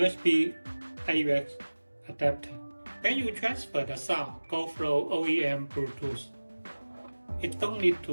AUX adapter. When you transfer the sound go through OEM Bluetooth, it don't need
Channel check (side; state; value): both; inverted; correlation -1.00